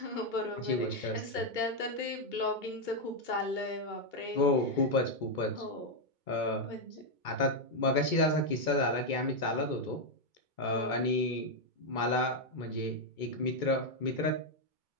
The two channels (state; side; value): late; right; 2.2 ms